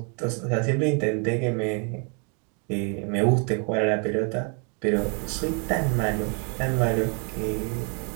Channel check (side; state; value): left; quieter; 37.8 dB